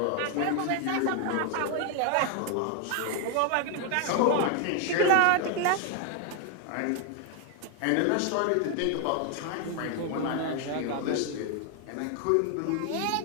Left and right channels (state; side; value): different; both; correlation 0.01